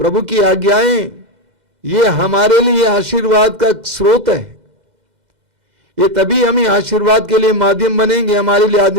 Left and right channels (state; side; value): late; left; 2.0 ms